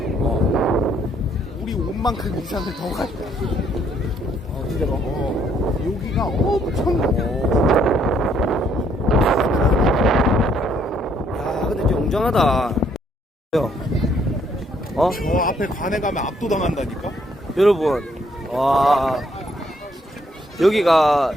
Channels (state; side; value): normal; both; correlation 0.68